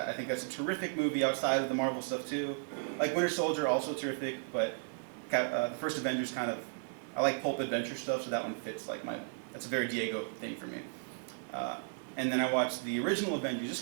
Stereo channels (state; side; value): silent; left; digital silence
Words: think that's a terrific movie outside of the Marvel stuff, too. Like Winter Soldier, also terrific, but the first Avengers kind of, I like pulp adventure stuff, so that one fits like that's a very Diego thing for me. And then I watched the original Avengers, just